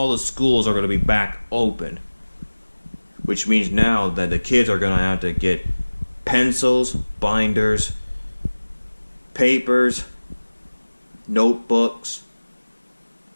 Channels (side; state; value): both; inverted; correlation -1.00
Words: the schools are going to be back open, which means now that the kids are going to have to get pencils, binders, papers, notebooks,